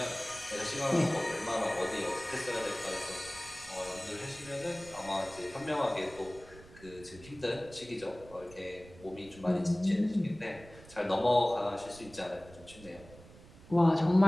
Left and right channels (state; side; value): noise; right; rumble, 20 dB below the sound